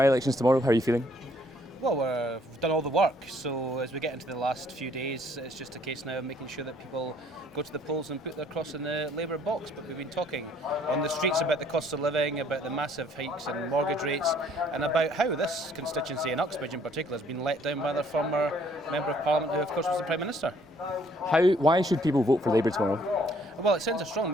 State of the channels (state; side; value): normal; both; correlation 0.63